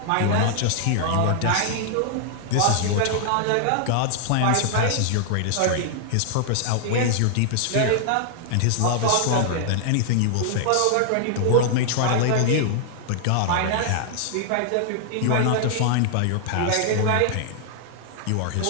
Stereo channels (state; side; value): different; both; correlation 0.00